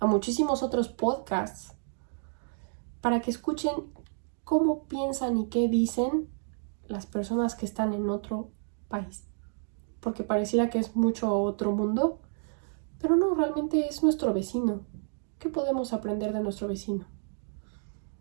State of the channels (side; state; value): left; silent; digital silence